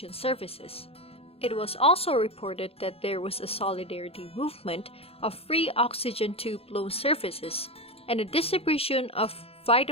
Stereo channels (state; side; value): late; right; 0.28 ms